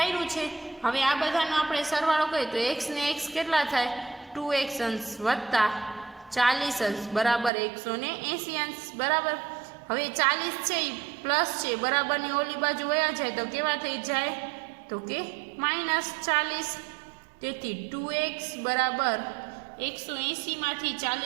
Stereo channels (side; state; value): left; drops out; at 7.5 s